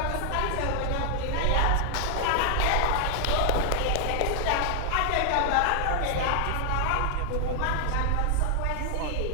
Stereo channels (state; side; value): different; both; correlation 0.00